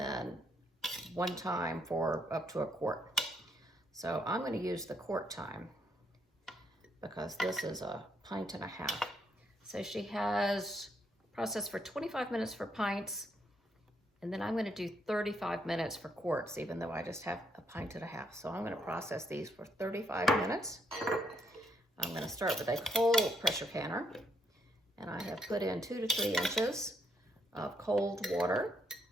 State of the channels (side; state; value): both; normal; correlation 0.75